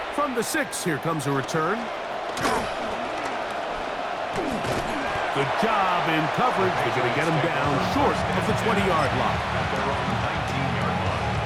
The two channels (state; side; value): identical; both; correlation 1.00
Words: From the 6, here comes a return. Good job in coverage. They're going to get him down short of the 20-yard line. At their own 19-yard line.